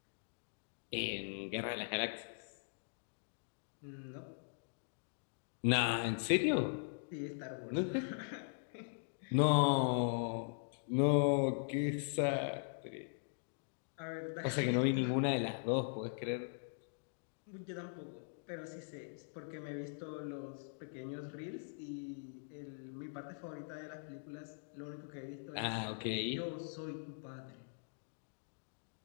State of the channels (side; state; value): right; silent; digital silence